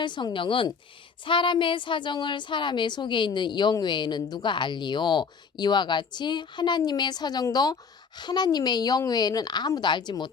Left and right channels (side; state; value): right; quieter; 5.6 dB